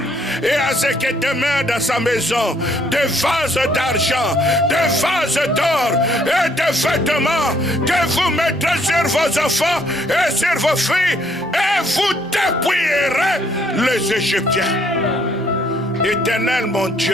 et à ce qui demeure dans sa maison des vases d'argent, des vases d'or et des vêtements que vous mettrez sur vos enfants et sur vos filles et vous dépouillerez les Égyptiens. Éternel mon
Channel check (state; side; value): normal; both; correlation 0.66